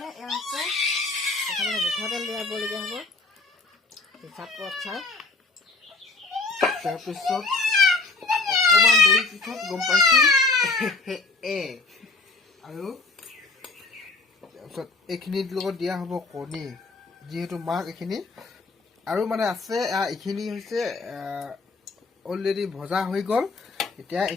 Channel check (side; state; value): right; quieter; 3.7 dB